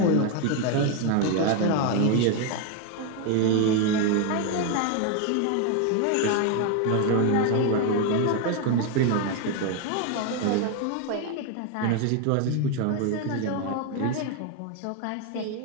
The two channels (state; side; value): different; both; correlation 0.01